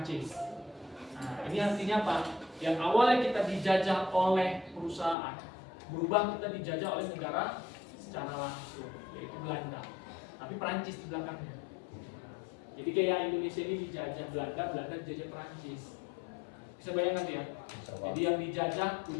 Nah ini artinya apa? Yang awalnya kita dijajah oleh perusahaan, berubah kita dijajah oleh negara secara langsung, yaitu Belanda. Tapi Prancis di belakangnya. Jadi kayak Indonesia ini dijajah Belanda, Belanda dijajah Prancis. Bisa bayangkan ya? Jadi yang dijajah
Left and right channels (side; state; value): right; drops out; at 5.2 s